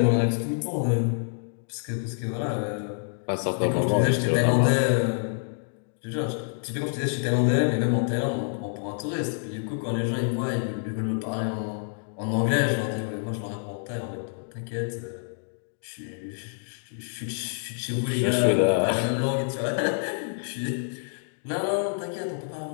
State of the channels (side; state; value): right; silent; digital silence